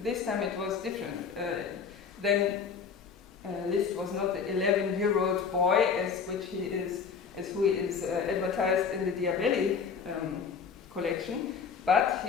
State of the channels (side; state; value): right; quieter; 6.1 dB